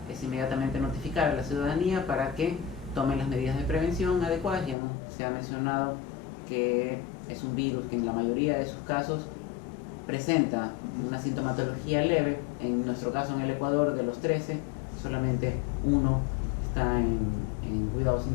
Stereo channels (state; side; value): drops out; right; at 4.8 s